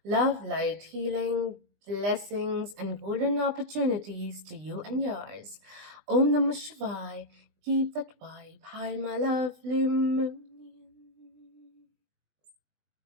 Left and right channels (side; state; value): left; late; 20 ms